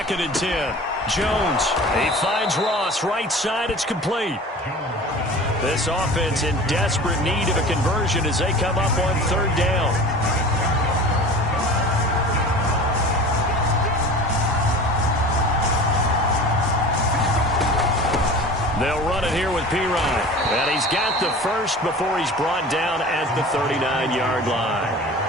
and 10. Jones, he finds Ross, right side, it's complete. This offense in desperate need of a conversion as they come up on 3rd down. They'll run it here with Pirine. And he's got the first before he's brought down at the 39-yard line.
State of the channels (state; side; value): normal; both; correlation 0.39